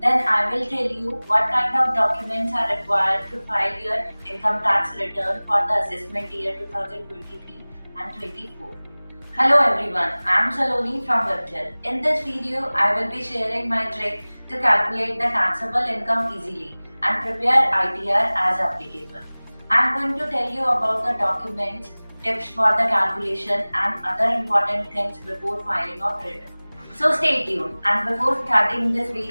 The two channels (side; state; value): both; inverted; correlation -1.00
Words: then I will tell you what kind of documents are required to file your income tax return for the assessment year 2023 and 24. Hello everyone, I am Saloni from Webtel. In this video, I will be sharing my trick to calculate the taxable income easily and prepare ITR as applicable. I am going to tell you about the documents, tips for the calculation and other important things before filing of return. So stay tuned, and before starting this